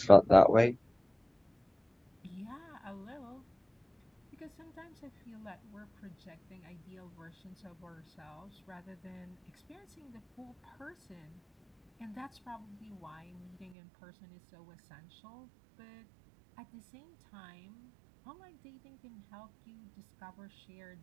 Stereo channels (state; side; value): drops out; left; at 13.7 s